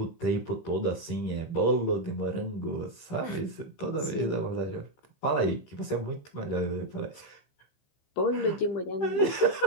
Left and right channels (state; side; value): late; right; 15 ms